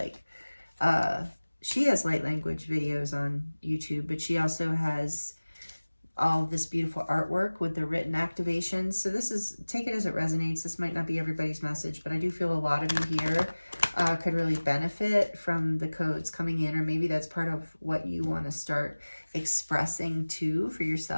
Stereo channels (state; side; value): inverted; both; correlation -1.00